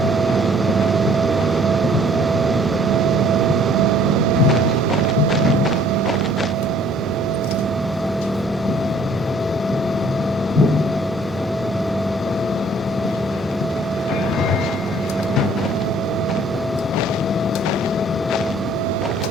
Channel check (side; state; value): both; normal; correlation 0.59